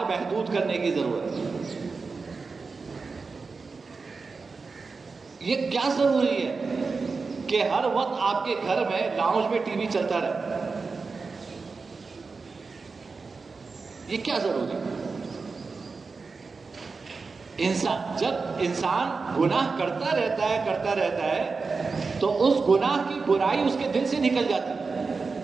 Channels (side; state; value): left; quieter; 4.4 dB